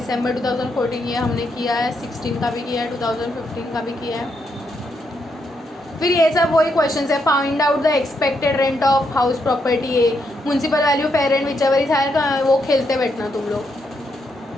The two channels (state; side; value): normal; both; correlation 0.79